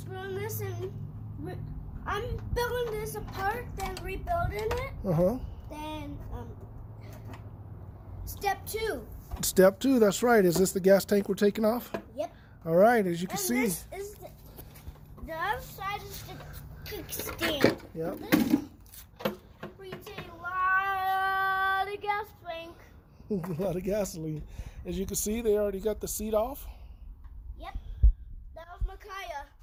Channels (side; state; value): both; identical; correlation 1.00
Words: this and I'm building this apart, then rebuilding it. Then step 2. Step 2, that's right. Is this the gas tank we're taking off? Yep. All right, as you can And see. this is the other side is the kickstand. Yep. This breathes a lot of gas tank. A lot of gasoline. As you can see, they already got the seat off. Yep. That was Micaiah.